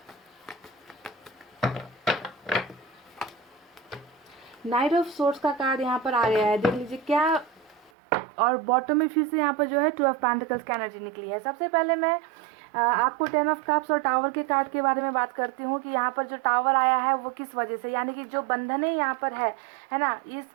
नाइट ऑफ सोर्ड्स का कार्ड यहाँ पर आ गया है, देख लीजिए क्या। और बॉटम में फिर से यहाँ पर जो है 2 ऑफ पेंटिकल्स की एनर्जी निकली है। सबसे पहले मैं आपको 10 ऑफ कप्स और टावर के कार्ड के बारे में बात करती हूँ कि यहाँ पर जो टावर आया है वो किस वजह से, यानी कि जो बंधनें यहाँ पर है ना, इस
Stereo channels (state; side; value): drops out; left; at 7.9 s